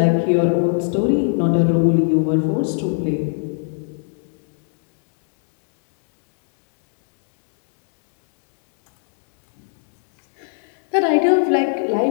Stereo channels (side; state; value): right; silent; digital silence